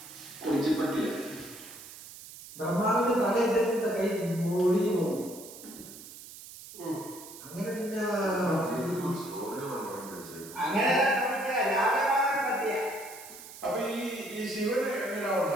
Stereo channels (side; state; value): right; noise; hiss, 15 dB below the sound